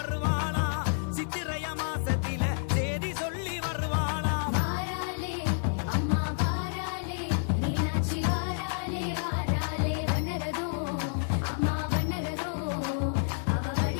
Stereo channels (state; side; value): silent; right; digital silence